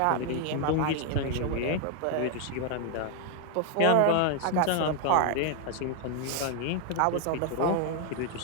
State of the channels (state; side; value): different; both; correlation 0.00